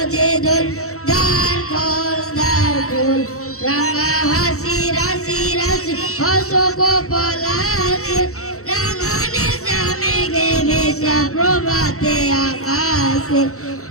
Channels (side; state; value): right; late; 0.64 ms